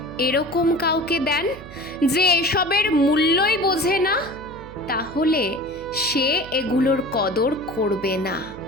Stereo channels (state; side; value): noise; right; hum, 17 dB below the sound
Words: এরকম কাউকে দেন যে এসবের মূল্যই বোঝে না, তাহলে সে এগুলোর কদর করবে না,